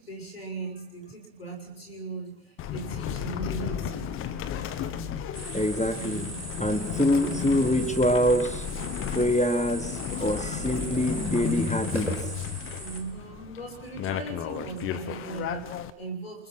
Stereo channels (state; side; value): normal; both; correlation 0.49